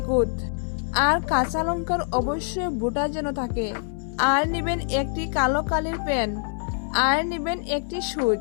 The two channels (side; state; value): right; silent; 62 dB below the other